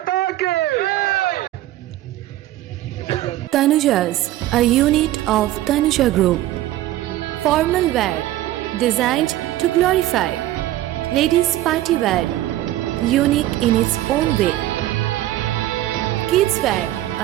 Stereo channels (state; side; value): quieter; left; 14.8 dB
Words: কে। Tanuja's, a unit of Tanuja Group. Formal wear designed to glorify. Ladies' party wear, unique in its own way. Kids wear,